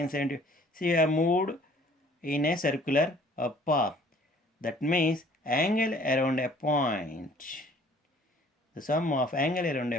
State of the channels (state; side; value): normal; both; correlation 0.55